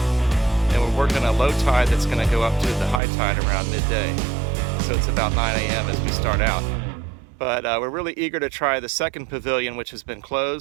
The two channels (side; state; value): left; drops out; at 3.0 s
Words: And we're working a low tide that's going to go up to the high tide around midday. So it's about 9 a.m. as we start out. But we're really eager to try the second pavilion, which has been